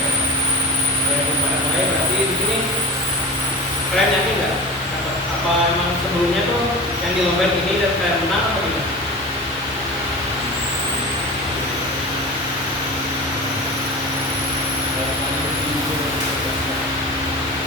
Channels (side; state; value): both; normal; correlation 0.32